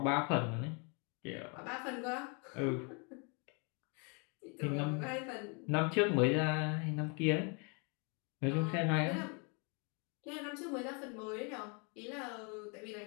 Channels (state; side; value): quieter; right; 34.9 dB